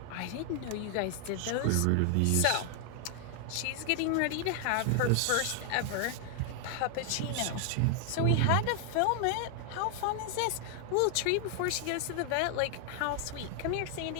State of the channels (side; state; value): both; different; correlation 0.00